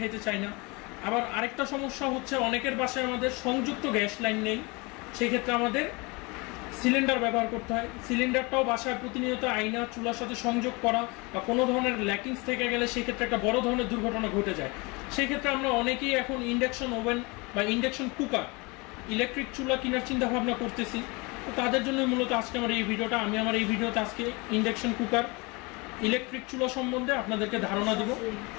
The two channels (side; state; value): right; quieter; 27.1 dB